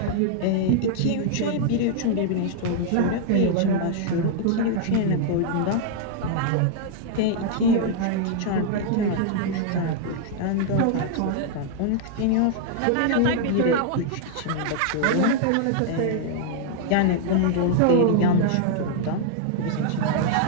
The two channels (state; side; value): different; both; correlation -0.01